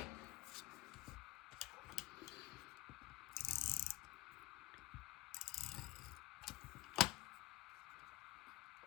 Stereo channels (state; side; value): quieter; right; 17.3 dB